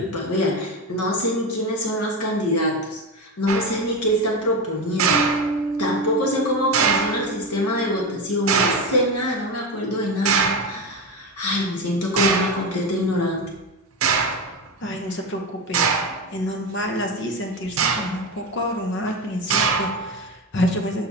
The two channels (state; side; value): normal; both; correlation 0.18